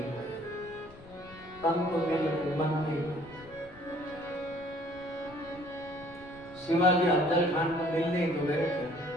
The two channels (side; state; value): left; noise; rumble, 21 dB below the sound